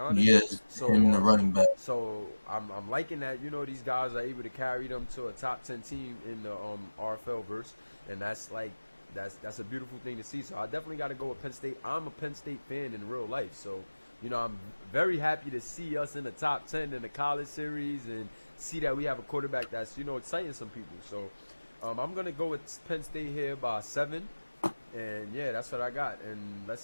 Yes, so him and the running back. so I'm liking that these guys are able to carry them to a top 10 team in the RFL verse, and that's a beautiful thing to see. So I definitely got to go with Penn State. I'm a Penn State fan in real life, so I'm very happy to see us in the top 10 in the college series and see that we have a quarterback that's exciting some people. So I'm gonna go with Penn State here by 7. And yeah, that's what I got. And let's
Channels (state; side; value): inverted; both; correlation -1.00